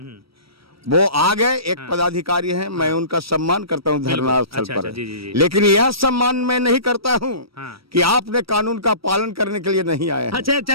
वो आ गए, एक पदाधिकारी हैं, मैं उनका सम्मान करता हूँ धरना स्थल अच्छा, पर। अच्छा, जी, जी, जी। लेकिन यह सम्मान मैं नहीं करता हूँ हाँ। कि आपने कानून का पालन करने के लिए नहीं आए हैं। अच्छा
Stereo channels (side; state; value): left; late; 0.75 ms